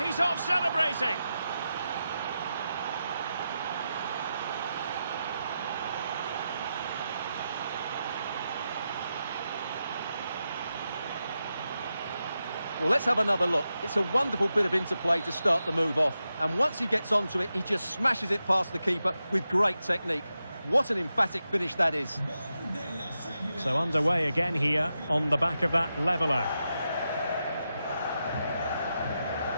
he's off celebrating. Well, let's have another look. It's a wonderful bit of interplay to start the move off. And once he gets onto it, he just smashes it past the keeper with great technique. What an emphatic finish that is. So underway again here on the back of that leveller.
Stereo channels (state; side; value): inverted; both; correlation -0.89